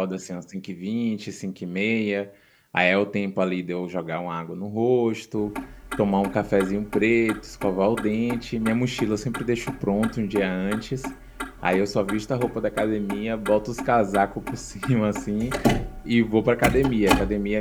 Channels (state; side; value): identical; both; correlation 1.00